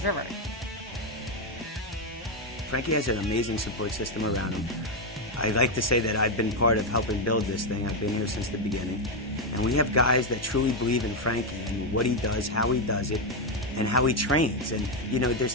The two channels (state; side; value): normal; both; correlation 0.04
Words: River. Frankie has an amazing support system around him. I like to say that I've been part of helping build this thing. I've been here since the beginning. And we have guys that truly believe in Frankie and what he does, how he does it, and how he trains. And, you know, there's